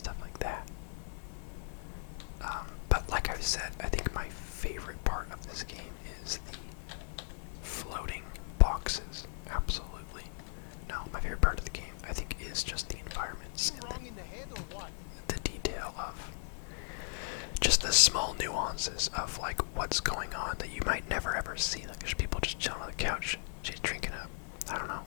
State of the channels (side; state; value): right; silent; digital silence